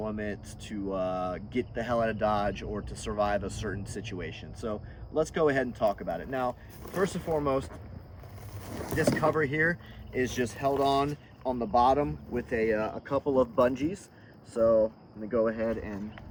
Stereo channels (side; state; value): both; identical; correlation 1.00